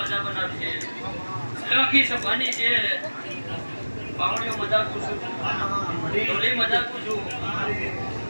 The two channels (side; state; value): both; inverted; correlation -1.00